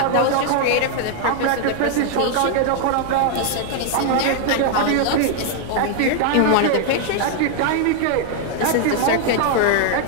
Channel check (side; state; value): both; different; correlation 0.00